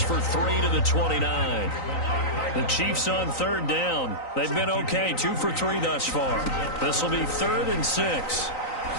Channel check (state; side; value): late; right; 3.9 ms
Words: for 3 to the 29. The Chiefs on third down. They've been okay, 2 for 3 thus far. This will be 3rd and 6.